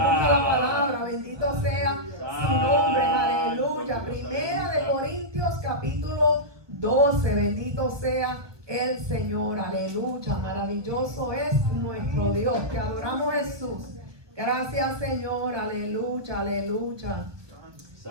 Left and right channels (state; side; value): late; left; 1.4 ms